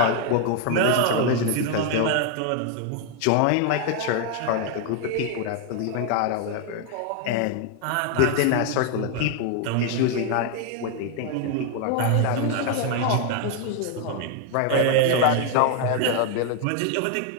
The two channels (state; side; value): different; both; correlation 0.01